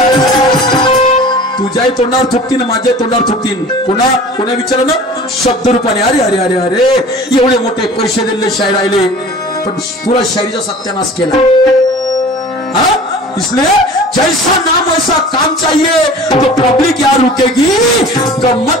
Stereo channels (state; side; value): normal; both; correlation 0.42